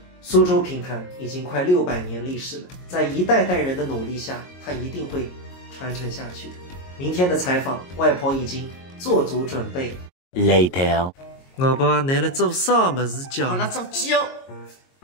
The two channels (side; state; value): right; late; 22 ms